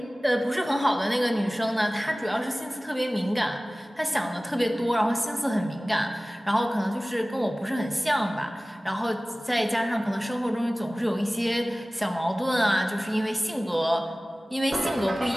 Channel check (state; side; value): normal; both; correlation 0.98